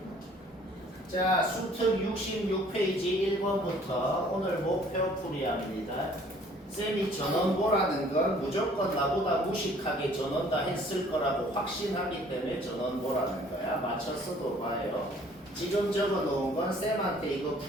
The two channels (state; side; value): normal; both; correlation 0.56